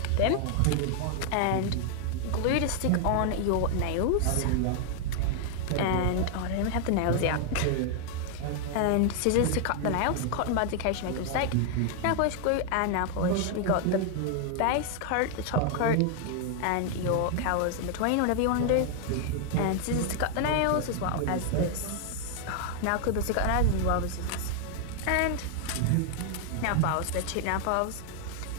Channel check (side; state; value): both; different; correlation 0.00